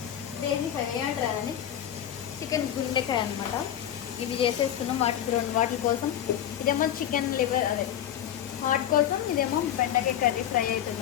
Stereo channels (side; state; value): right; quieter; 10.8 dB